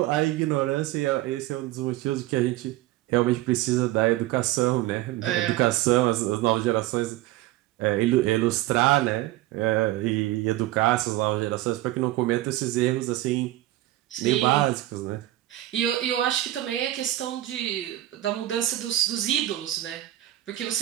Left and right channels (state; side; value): quieter; left; 15.8 dB